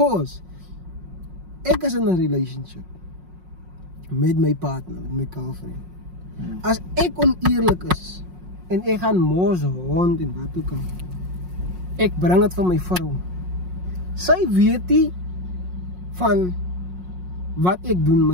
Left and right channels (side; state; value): left; late; 5.5 ms